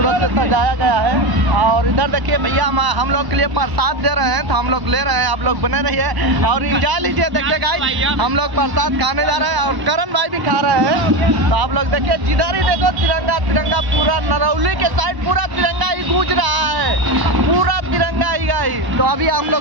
से सजाया गया है। और इधर देखिए भैया हम लोग के लिए प्रसाद दे रहे हैं, तो हम लोग ले रहे हैं, आप लोग बने रहिए और एंजॉय लीजिए। देखिए गाइस, हम लोग प्रसाद खाने जा रहे हैं और करण भाई भी खा रहे हैं। तो आप लोग देखिए, जिधर ही देखो तिरंगा तिरंगा, पूरा नरौली के साइड पूरा तिरंगा ही गूंज रहा है, पूरा तिरंगा ही गाइस। तो अभी हम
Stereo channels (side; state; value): left; late; 1.1 ms